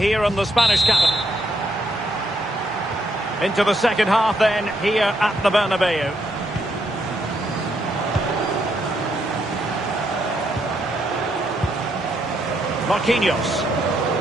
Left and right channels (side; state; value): both; normal; correlation 0.76